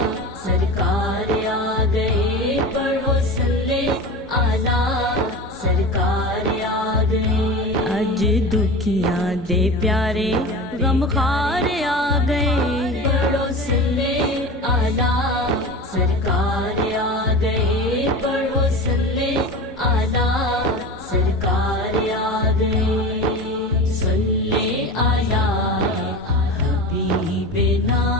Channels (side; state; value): both; normal; correlation 0.31